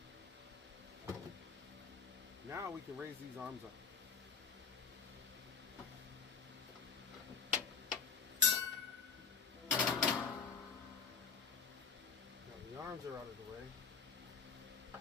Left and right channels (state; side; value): quieter; right; 5.8 dB